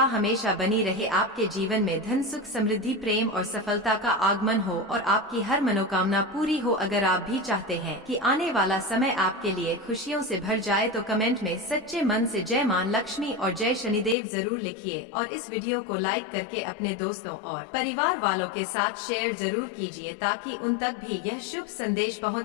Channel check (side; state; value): right; drops out; at 14.2 s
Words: हमेशा बनी रहे। आपके जीवन में धन, सुख, समृद्धि, प्रेम और सफलता का आगमन हो और आपकी हर मनोकामना पूरी हो। अगर आप भी चाहते हैं कि आने वाला समय आपके लिए खुशियों से भर जाए तो कमेंट में सच्चे मन से जय मां लक्ष्मी और जय शनिदेव जरूर लिखिए और इस वीडियो को लाइक करके अपने दोस्तों और परिवार वालों के साथ शेयर जरूर कीजिए ताकि उन तक भी यह शुभ संदेश